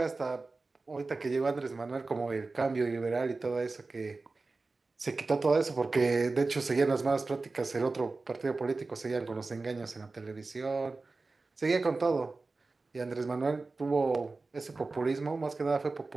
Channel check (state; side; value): quieter; left; 3.7 dB